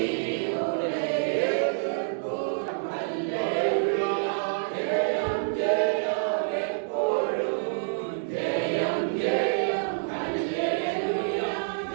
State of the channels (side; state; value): left; silent; digital silence